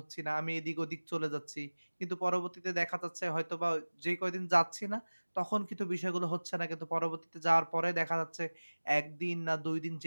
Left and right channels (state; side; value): inverted; both; correlation -1.00